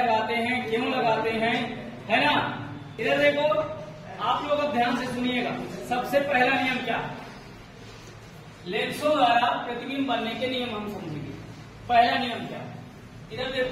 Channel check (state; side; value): identical; both; correlation 1.00